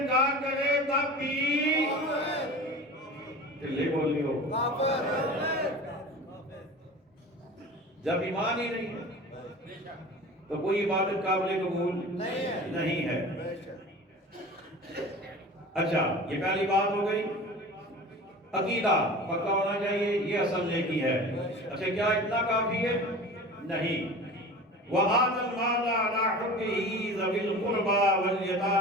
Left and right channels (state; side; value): normal; both; correlation 0.37